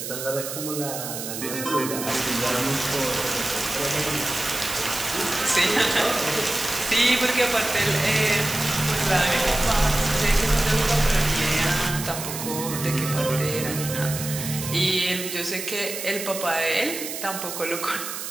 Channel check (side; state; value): right; noise; hiss, 7 dB below the sound